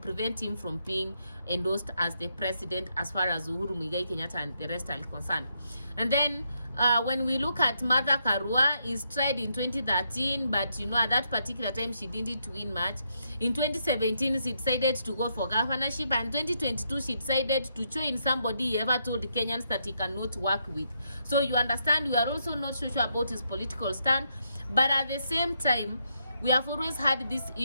him from being endorsed as the president as far as Uhuru Muigai Kenyatta and the rest are concerned. And then when we look at Martha Karua, is tried in 2013, but at that particular time she didn't win much. In 2017 she decided to go for governorship, and 2022 she decided to join somebody he ever told Kenyans that he cannot work with. So you understand, we are also not so sure about his political stand, but at the same time we have always had these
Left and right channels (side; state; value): both; inverted; correlation -0.78